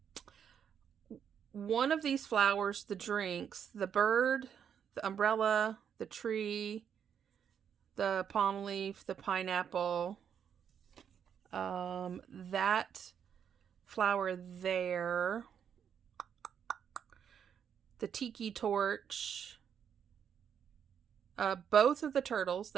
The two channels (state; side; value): quieter; left; 8.1 dB